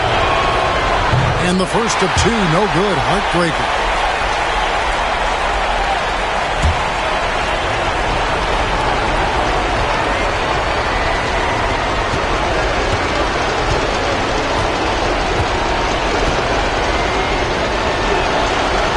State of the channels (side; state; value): both; identical; correlation 1.00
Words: And the first of 2, no good. Heartbreaker.